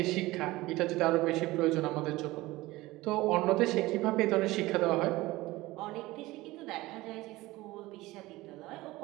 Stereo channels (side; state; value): left; quieter; 19.2 dB